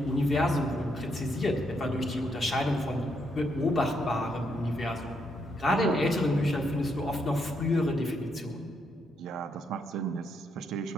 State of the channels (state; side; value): normal; both; correlation 0.77